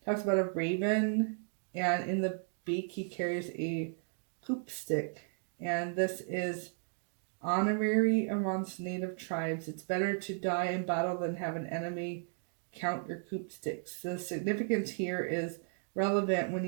talks about a raven, and in the beak he carries a hoop stick, and this is honorary amongst native tribes. It's better to die in battle than have an enemy count your hoop sticks. The significance here is relevant when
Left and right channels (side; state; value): left; silent; 55 dB below the other